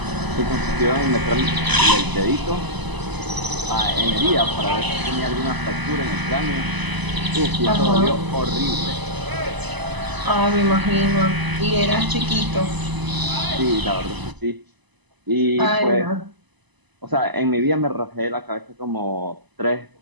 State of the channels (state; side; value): late; left; 1.0 ms